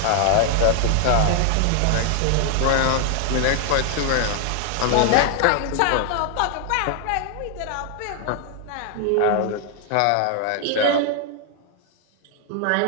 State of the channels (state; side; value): different; both; correlation 0.00